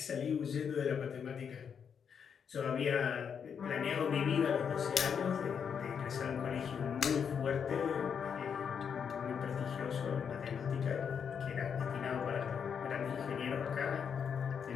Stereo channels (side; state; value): right; quieter; 7.1 dB